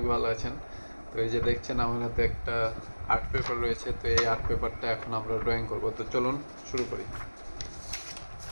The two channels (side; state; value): both; inverted; correlation -1.00